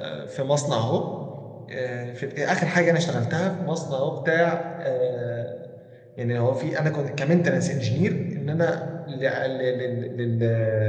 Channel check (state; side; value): identical; both; correlation 1.00